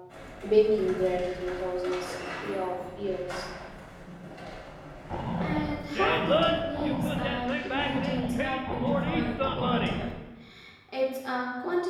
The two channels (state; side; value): identical; both; correlation 1.00